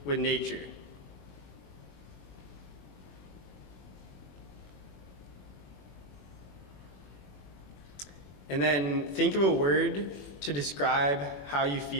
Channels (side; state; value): right; late; 21 ms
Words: with nature. And then think of a word to describe how you